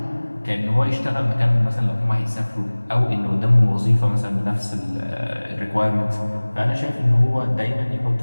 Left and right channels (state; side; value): inverted; both; correlation -1.00